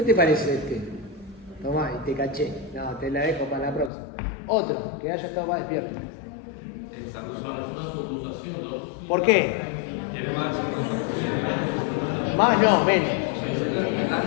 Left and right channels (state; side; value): drops out; right; at 3.9 s